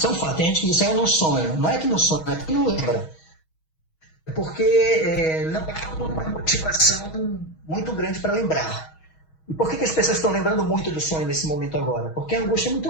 é um fato. Tem gente que diz, eu não sonho. Não é que não sonha, é que não lembra. porque não há uma motivação muito grande para lembrar. E por que as pessoas estão lembrando muito do sonho nesse momento agora? Porque a angústia é muito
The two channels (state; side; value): late; right; 6.3 ms